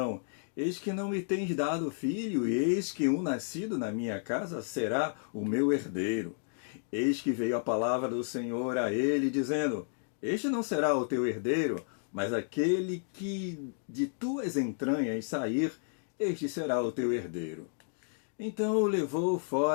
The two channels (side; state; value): right; silent; digital silence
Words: Eis que não me tens dado filho, e eis que um nascido na minha casa será o meu herdeiro. Eis que veio a palavra do Senhor a ele, dizendo: Este não será o teu herdeiro, mas aquele que de tuas entranhas sair, este será o teu herdeiro. Então o levou